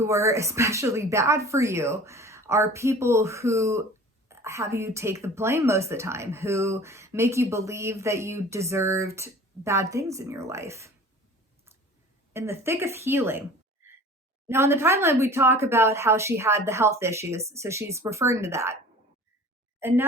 are especially bad for you, are people who have you take the blame most of the time, who make you believe that you deserved bad things in your life. in the thick of healing. Now, in the timeline, we talk about how she had the health issues, so she's referring to that. And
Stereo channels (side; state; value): both; normal; correlation 0.43